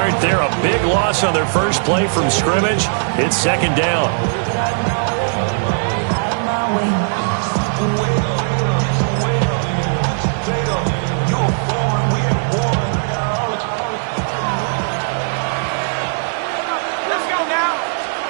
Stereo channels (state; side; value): silent; left; digital silence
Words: there. A big loss on their first play from scrimmage. It's 2nd down.